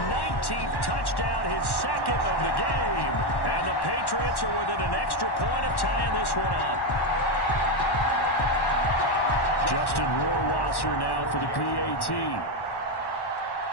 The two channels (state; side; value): late; right; 1.1 ms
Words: 19th touchdown, his second of the game. And the Patriots are within an extra point of tying this one up. Justin Rohrwasser now for the PAT.